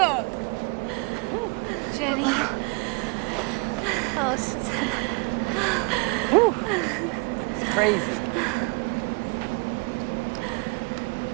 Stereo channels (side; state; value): left; quieter; 31.4 dB